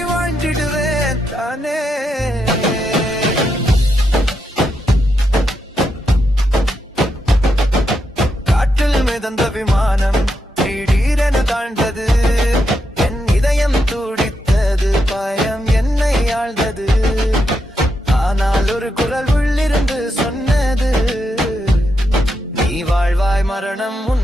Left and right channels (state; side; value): normal; both; correlation 0.83